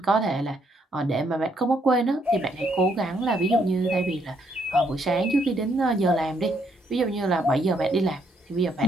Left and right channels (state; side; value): normal; both; correlation 0.72